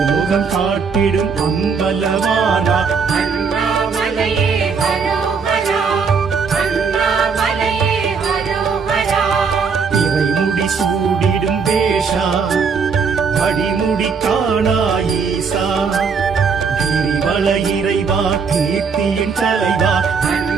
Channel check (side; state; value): left; quieter; 5.6 dB